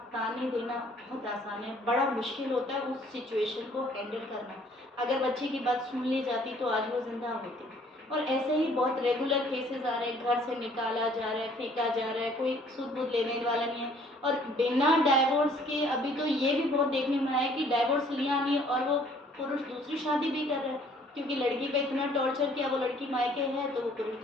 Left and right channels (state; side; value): normal; both; correlation 0.59